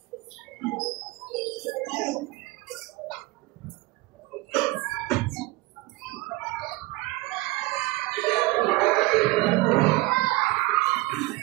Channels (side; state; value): left; quieter; 20.9 dB